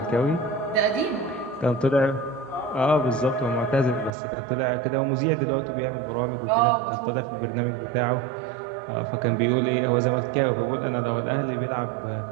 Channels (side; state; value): left; drops out; at 4.1 s